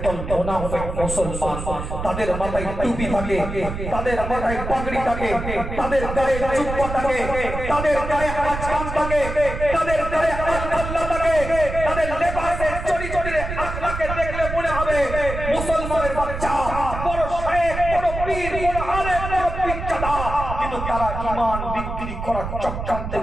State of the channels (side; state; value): right; noise; rumble, 6 dB below the sound